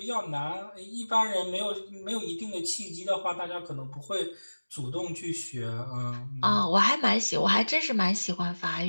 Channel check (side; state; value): both; inverted; correlation -1.00